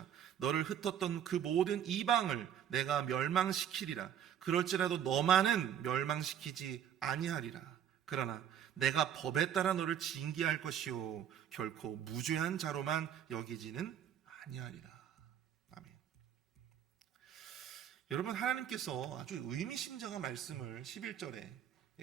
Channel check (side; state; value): left; quieter; 9.6 dB